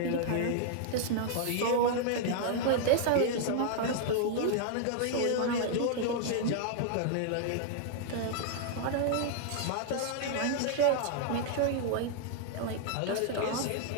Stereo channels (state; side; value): different; both; correlation -0.01